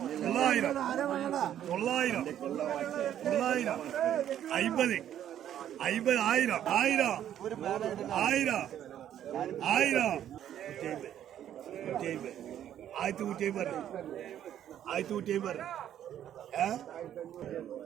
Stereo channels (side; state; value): left; quieter; 10.7 dB